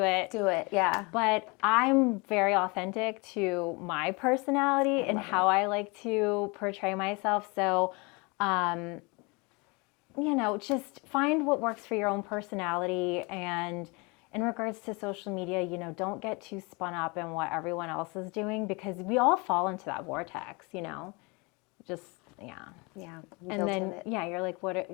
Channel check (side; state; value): right; quieter; 28.4 dB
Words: it. Do it, yeah. But I'm very authentic to my personality and how I like to portray myself. So, just find what works for your own personality. And in regards to social media, don't get too spun up in what everyone else is doing, because we all fall into that vortex, just, yeah. Yeah. And then, you're like,